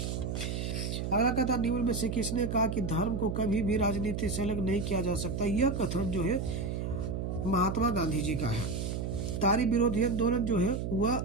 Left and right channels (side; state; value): right; noise; hum, 3 dB below the sound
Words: अगला कहता निम्न में से किसने कहा कि धर्म को कभी भी राजनीति से अलग नहीं किया जा सकता। यह कथन जो है महात्मा गांधी जी का है। तारी विरोधी आंदोलन जो है वह